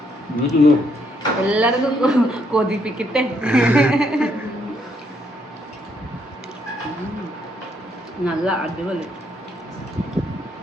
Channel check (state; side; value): normal; both; correlation 0.73